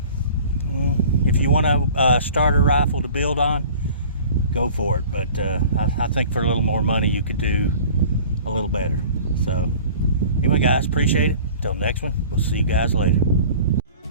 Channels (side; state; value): both; inverted; correlation -0.45